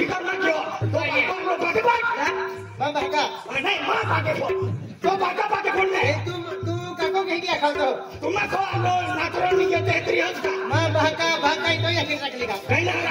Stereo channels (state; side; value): identical; both; correlation 1.00